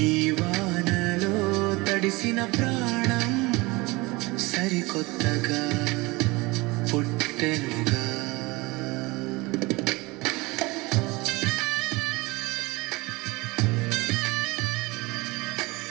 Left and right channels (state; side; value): quieter; left; 23.4 dB